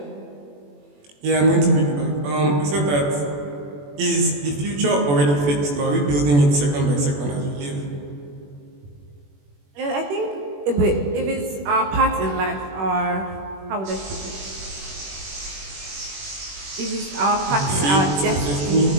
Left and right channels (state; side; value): late; left; 21 ms